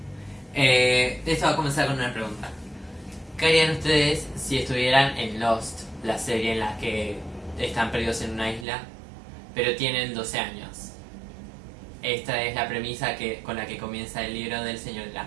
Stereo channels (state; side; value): drops out; left; at 8.7 s